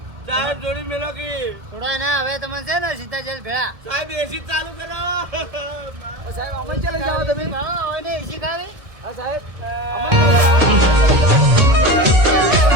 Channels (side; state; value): left; late; 1.6 ms